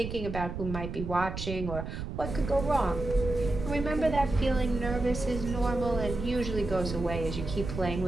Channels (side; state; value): right; noise; rumble, 6 dB below the sound